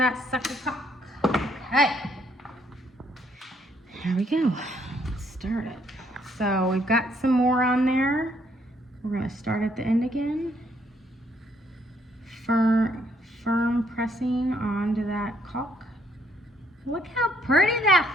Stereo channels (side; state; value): both; normal; correlation 0.69